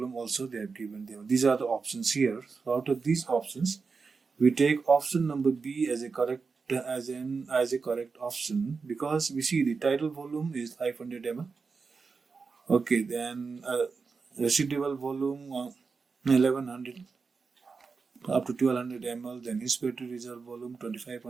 also they have given them. These are the options here. So out of these options, we take option number B as a correct option, because we see the title volume is 500 ml. Okay, then residual volume 1100 up to 1200 ml, then inspiratory reserve volume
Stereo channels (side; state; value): left; quieter; 4.8 dB